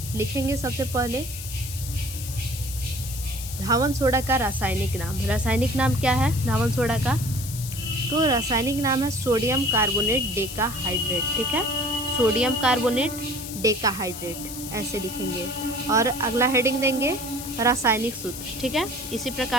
लिखेंगे सबसे पहले धावन सोडा का रासायनिक नाम। रासायनिक नाम क्या है धावन सोडा का, तो रासायनिक नाम है सोडियम कार्बोनेट डेकाहाइड्रेट। ठीक है, सोडियम कार्बोनेट डेकाहाइड्रेट ऐसे लिखेंगे, और अगला हेडिंग देंगे रासायनिक सूत्र। ठीक है, इसी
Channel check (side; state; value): left; noise; hiss, 10 dB below the sound